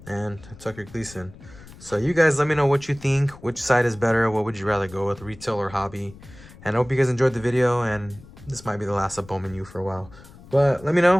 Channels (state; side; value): noise; left; rumble, 20 dB below the sound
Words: and Tucker Gleason. So you guys let me know what you think, which side is better, what would you rather go with, retail or hobby. And I hope you guys enjoyed the video, and this might be the last of Bowman U for a while. But let me